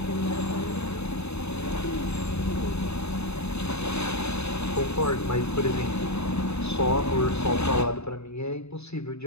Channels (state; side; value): late; right; 0.80 ms